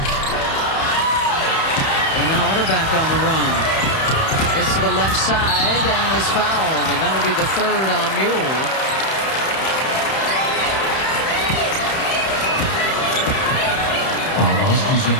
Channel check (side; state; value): right; late; 31 ms